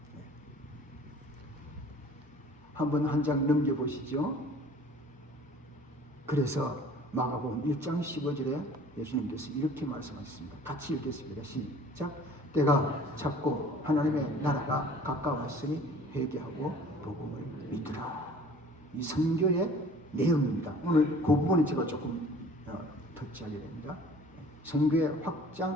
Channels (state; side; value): normal; both; correlation 0.49